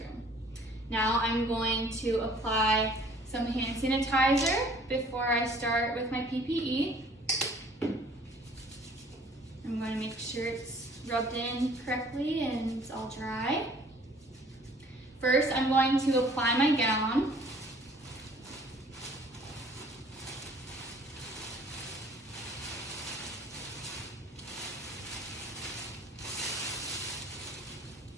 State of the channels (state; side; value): normal; both; correlation 0.54